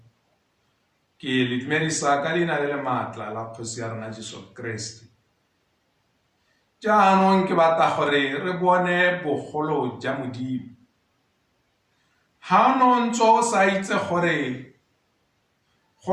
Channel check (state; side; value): identical; both; correlation 1.00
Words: ke le dumedisa ka leina le maatla la Kgosi ya rona Jesu Kriste. Jaanong ke batla gore re bone bogolo ja Modimo. Ha no ntso sa itse gore